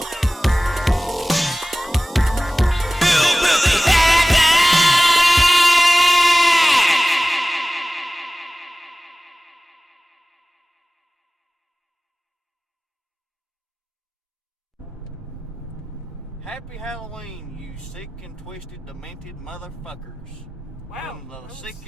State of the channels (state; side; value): normal; both; correlation 0.97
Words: Happy Halloween, you sick and twisted, demented motherfuckers. Wow. From the sick